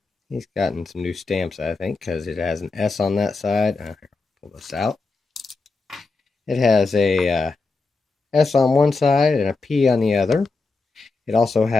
he's gotten some new stamps, I think, because it has an S on that side. Here, pull this out. It has a S on one side and a P on the other. It also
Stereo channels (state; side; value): quieter; right; 3.9 dB